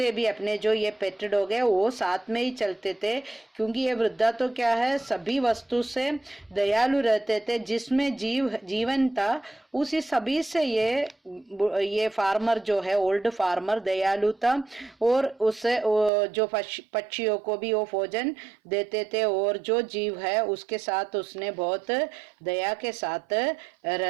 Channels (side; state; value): left; drops out; at 16.1 s